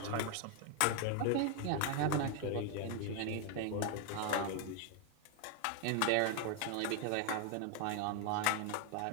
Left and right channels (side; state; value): both; different; correlation 0.01